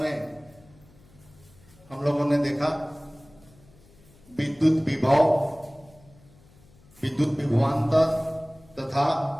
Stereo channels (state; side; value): noise; left; hum, 27 dB below the sound